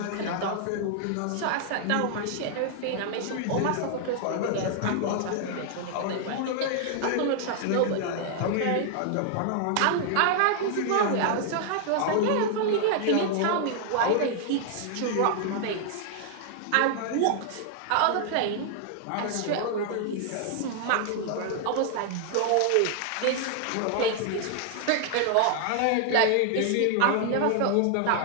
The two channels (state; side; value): different; both; correlation 0.00